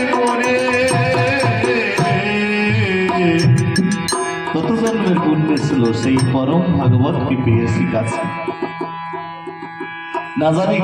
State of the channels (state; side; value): identical; both; correlation 1.00